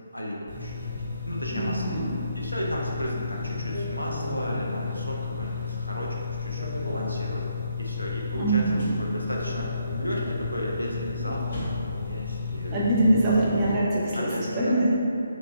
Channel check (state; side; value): inverted; both; correlation -0.73